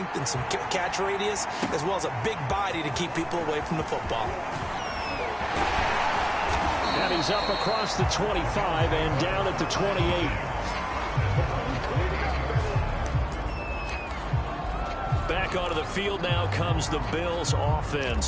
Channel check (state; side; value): identical; both; correlation 1.00